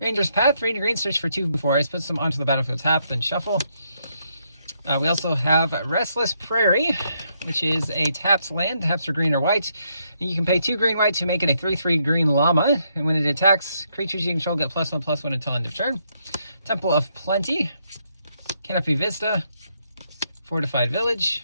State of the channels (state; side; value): inverted; both; correlation -0.76